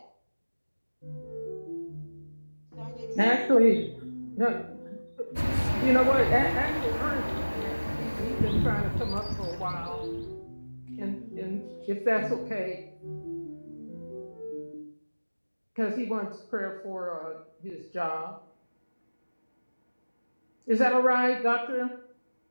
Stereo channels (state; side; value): inverted; both; correlation -1.00